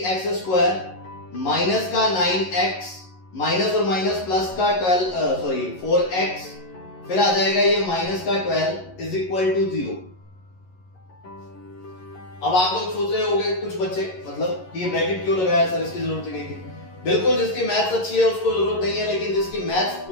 माइनस का 9x माइनस और माइनस प्लस का 4x, फिर आ जाएगा ये माइनस का 12 इज इक्वल टू 0। अब आप लोग सोच रहे होंगे कुछ बच्चे, मतलब ये ब्रैकेट क्यों लगाया सर, इसकी जरूरत ही नहीं थी। बिल्कुल, जिसकी मैथ्स अच्छी है उसको जरूरत नहीं है, लेकिन जिसकी मैथ्स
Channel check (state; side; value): late; right; 11 ms